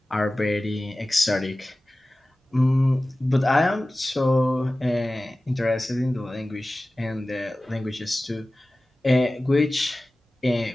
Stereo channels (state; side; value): normal; both; correlation 0.97